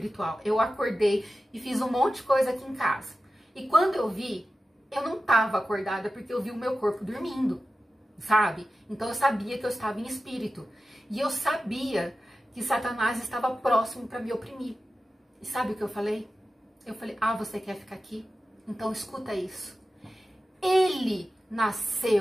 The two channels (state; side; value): normal; both; correlation 0.93